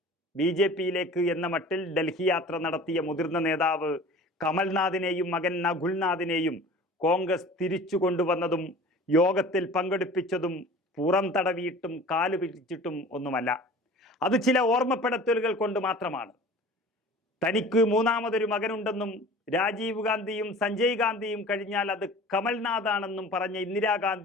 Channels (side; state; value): both; normal; correlation 0.42